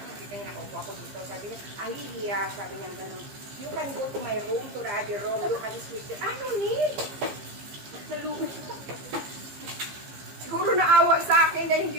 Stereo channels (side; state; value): left; late; 15 ms